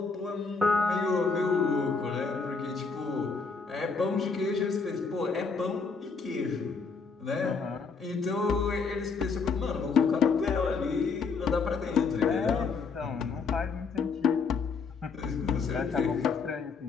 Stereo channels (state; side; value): quieter; right; 4.9 dB